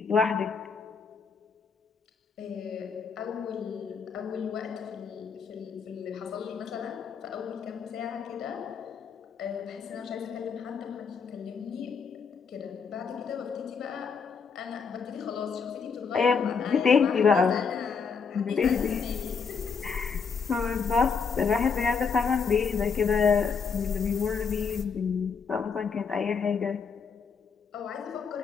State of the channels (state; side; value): quieter; right; 5.7 dB